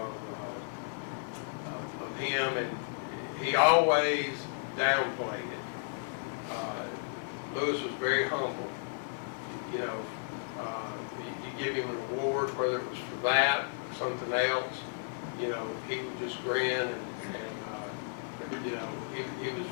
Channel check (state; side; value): silent; right; 55 dB below the other